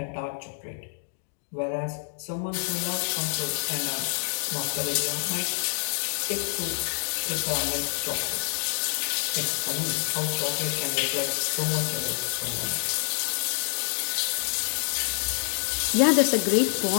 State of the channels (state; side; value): silent; right; digital silence